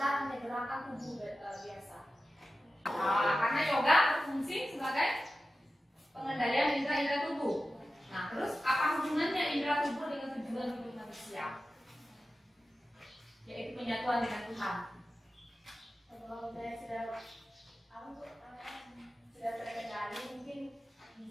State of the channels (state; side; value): normal; both; correlation 0.93